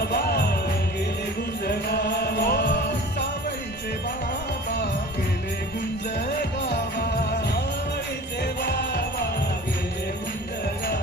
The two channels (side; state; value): both; normal; correlation 0.41